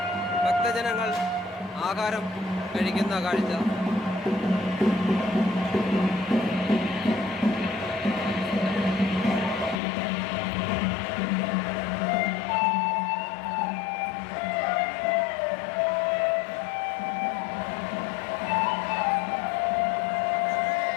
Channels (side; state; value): right; drops out; at 9.8 s